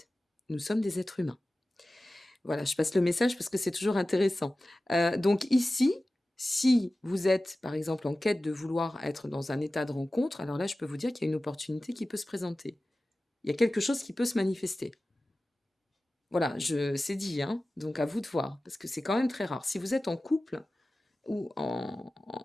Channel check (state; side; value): normal; both; correlation 0.96